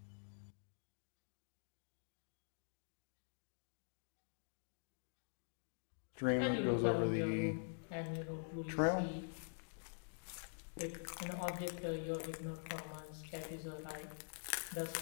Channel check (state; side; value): silent; right; digital silence